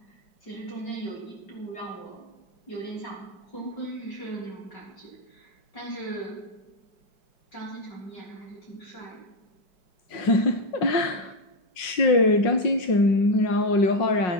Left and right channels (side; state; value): right; late; 5.5 ms